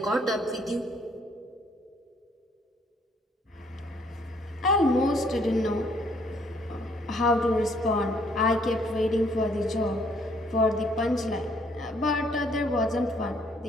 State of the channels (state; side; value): normal; both; correlation 0.65